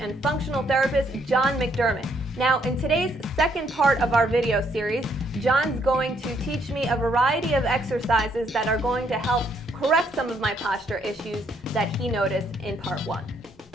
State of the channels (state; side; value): normal; both; correlation 0.70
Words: functional therapist, John McDermott. Now, in today's second part of our video series, John's going to teach me a variety of exercises that are going to help correct some of my posture issues that he noticed in part one.